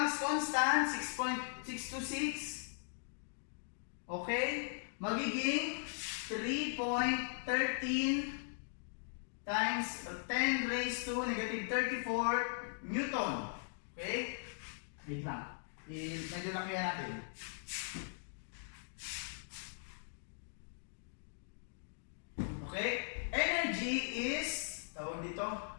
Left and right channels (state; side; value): silent; right; digital silence